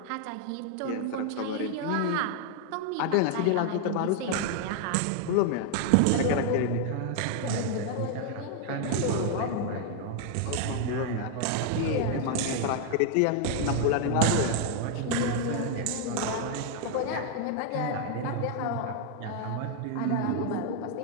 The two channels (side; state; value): both; different; correlation 0.00